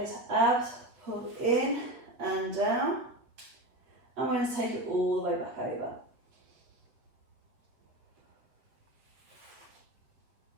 abs pull in and down. I'm going to take it all the way back over.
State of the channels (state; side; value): late; left; 8.0 ms